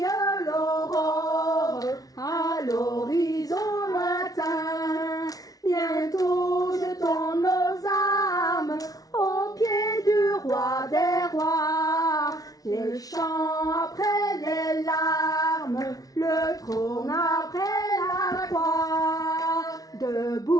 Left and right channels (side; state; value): right; late; 0.18 ms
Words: l'aurore à l'horizon lointain. Bientôt jetons nos âmes aux pieds du roi des rois, les chants après les larmes, le trône après la croix.